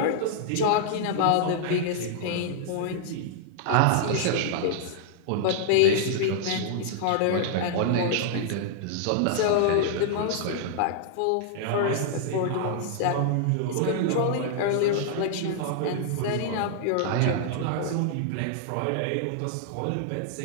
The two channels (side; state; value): both; different; correlation -0.01